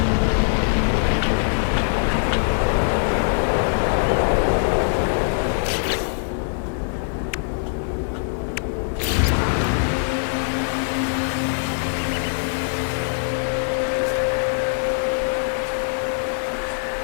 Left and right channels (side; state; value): right; silent; digital silence